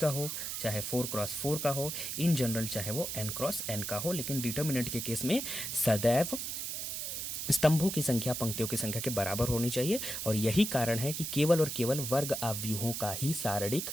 हो, चाहे 4x4 का हो, इन जनरल चाहे वो n×n का हो। लेकिन डिटर्मिनेंट के केस में सदैव स्तंभों की संख्या पंक्तियों की संख्या के बराबर होनी चाहिए, और यही कारण है कि केवल और केवल वर्ग अव्यूहों का ही सारणिक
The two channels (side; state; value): right; noise; hiss, 4 dB below the sound